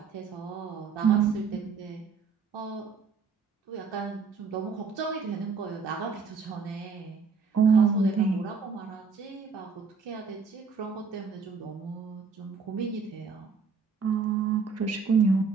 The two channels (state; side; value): quieter; left; 5.2 dB